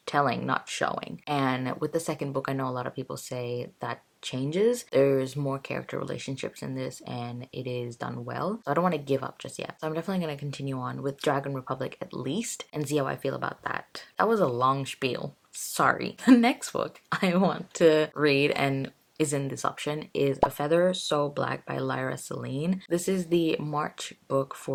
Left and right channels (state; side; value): identical; both; correlation 1.00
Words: telling, not showing. And with the second book, I know a lot of people say that changes. There's more character relationships in this, and it is done well. So I don't want to give up just yet. So I'm definitely going to continue on with Dragon Republic at least and see how I feel about that. That was a long spiel. Sorry. The next book I want to read and is in this option is A Feather So Black by Lyra Celine. This is the March book